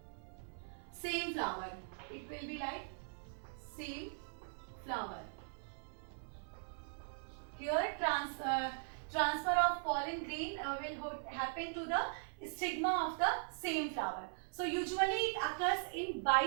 same flower. It will be like same flower. Here transfer of pollen grain will happen to the stigma of the same flower. So usually it occurs in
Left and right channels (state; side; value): silent; left; 51 dB below the other